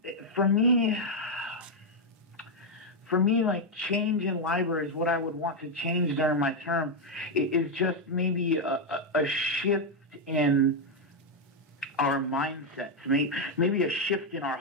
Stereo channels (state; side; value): normal; both; correlation 0.02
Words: for me, like, change in libraries, what I would want to change during my term is just maybe a shift in our mindsets, maybe a shift in our